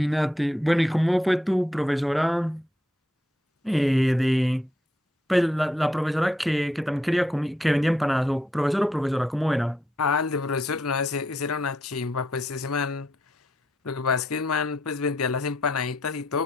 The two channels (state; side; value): normal; both; correlation 0.77